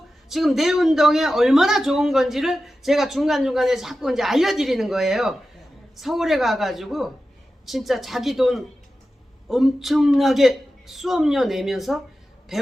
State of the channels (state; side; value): normal; both; correlation 0.93